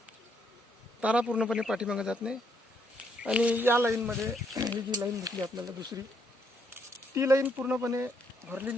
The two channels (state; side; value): normal; both; correlation 0.73